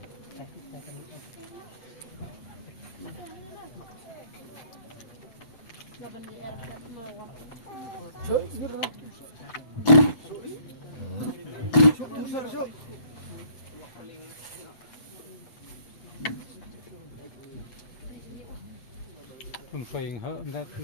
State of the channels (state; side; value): late; right; 7.9 ms